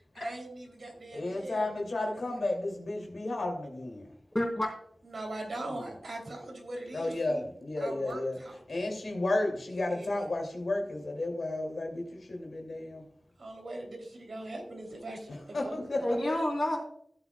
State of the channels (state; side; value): normal; both; correlation 0.96